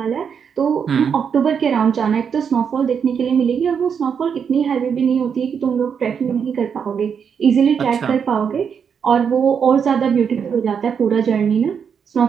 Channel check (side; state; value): left; quieter; 7.0 dB